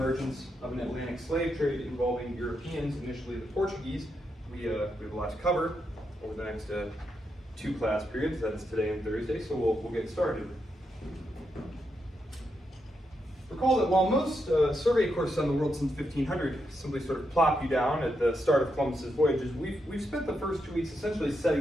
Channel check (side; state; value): both; normal; correlation 0.83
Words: of an Atlantic slave trade involving Europeans, initially the Portuguese. We have a lot to cover over the next 2 class periods, that's today and Thursday, so we'll get started. Recall that while most survey courses on the world since 1500 simply sort of plop you down at the start of Columbus's voyages, we've spent the first 2 weeks essentially